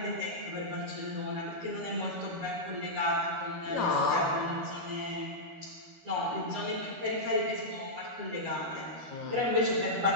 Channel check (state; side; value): late; left; 13 ms